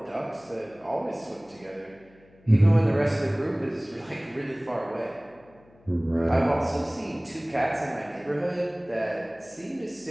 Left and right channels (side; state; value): left; noise; hum, 28 dB below the sound